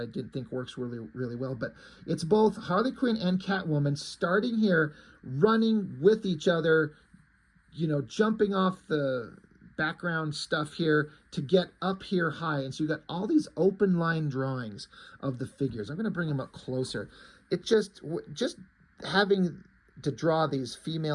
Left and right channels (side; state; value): both; identical; correlation 1.00